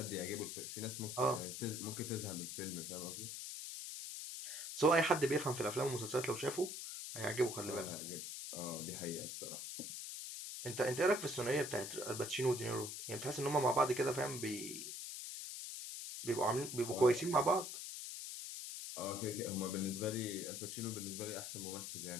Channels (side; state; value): left; noise; hiss, 7 dB below the sound